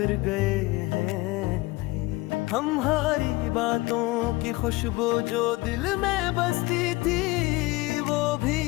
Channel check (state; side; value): quieter; right; 21.6 dB